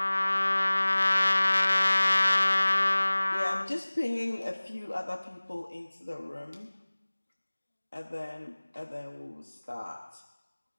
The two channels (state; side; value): inverted; both; correlation -1.00